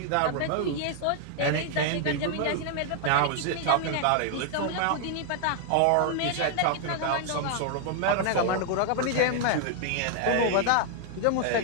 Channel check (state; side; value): different; both; correlation 0.00